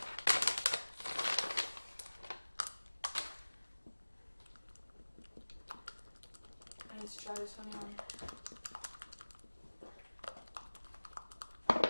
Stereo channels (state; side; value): inverted; both; correlation -1.00